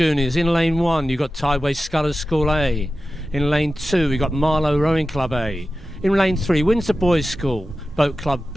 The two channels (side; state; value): both; normal; correlation 0.94